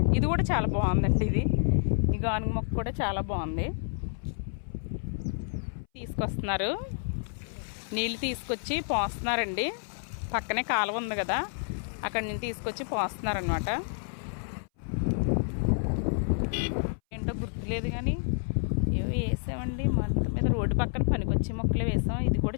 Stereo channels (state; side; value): silent; right; 58 dB below the other